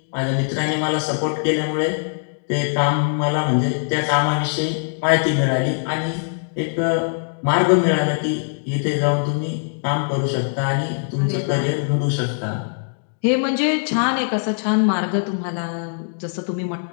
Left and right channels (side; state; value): right; silent; digital silence